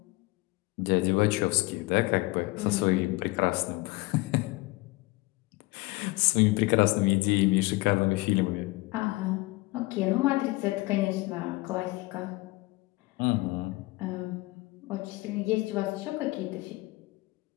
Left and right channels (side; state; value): right; quieter; 22.6 dB